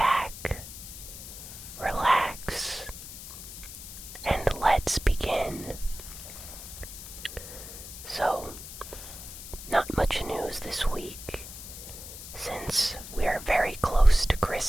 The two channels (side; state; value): left; noise; hiss, 12 dB below the sound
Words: relax, and let's begin. So, not much news this week, since we are very close to